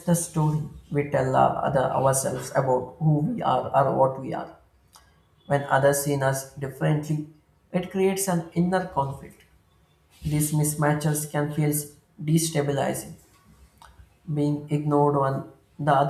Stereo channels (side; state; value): both; identical; correlation 1.00